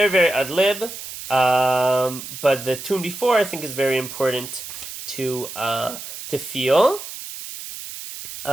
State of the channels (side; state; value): right; noise; hiss, 10 dB below the sound